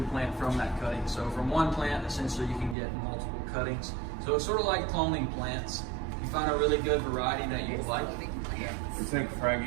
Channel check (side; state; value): left; drops out; at 2.8 s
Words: plant from that cutting. So from one plant, essentially you can get multiple cuttings. So it's sort of like cloning plants. You find a really good variety that you like. It's like